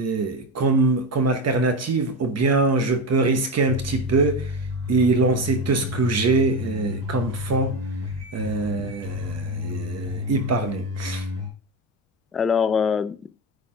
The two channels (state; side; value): normal; both; correlation 0.18